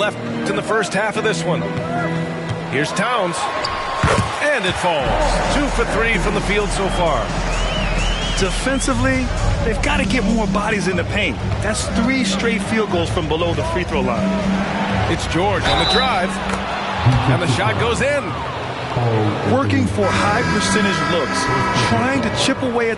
in the first half of this one. Here's Towns. And it falls. 2 for 3 from the field so far. Defensively, they've got to get more bodies in the paint. That's 3 straight field goals from below the free throw line. It's George on the drive. And the shot goes in. Working for high percentage looks. Trying to chip away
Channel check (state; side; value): identical; both; correlation 1.00